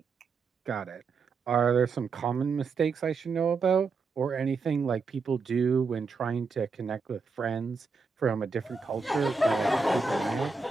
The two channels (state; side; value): quieter; left; 4.7 dB